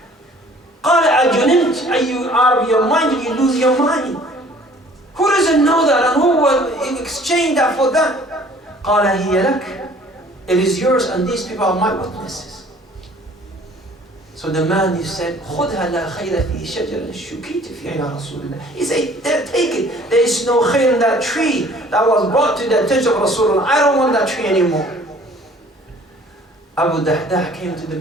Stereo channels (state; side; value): normal; both; correlation 0.53